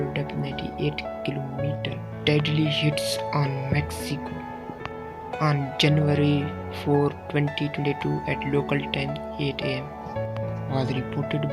depth 98 km. Deadly hits on Mexico on January 4, 2022 at local time 8 am. Was reported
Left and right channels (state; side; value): identical; both; correlation 1.00